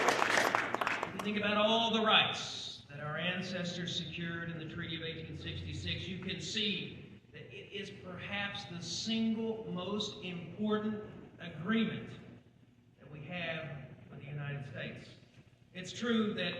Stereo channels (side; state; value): both; identical; correlation 1.00